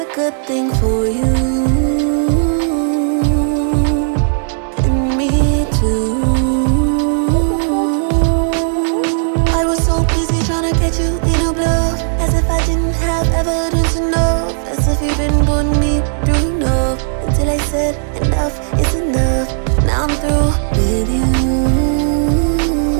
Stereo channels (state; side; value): silent; left; digital silence